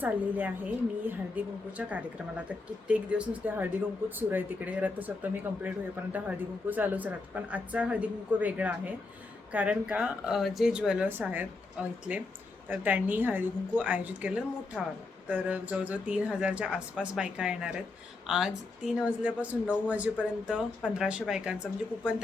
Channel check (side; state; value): right; quieter; 3.6 dB